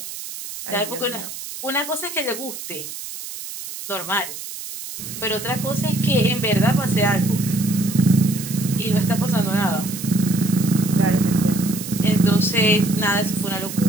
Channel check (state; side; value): noise; right; hiss, 10 dB below the sound